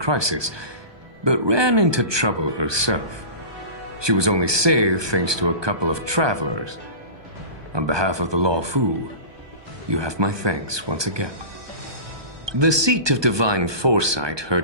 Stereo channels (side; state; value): left; late; 1.2 ms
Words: but ran into trouble herself. She was only saved thanks to a couple of travelers. On behalf of the Law Fu, you have my thanks once again. The seat of divine foresight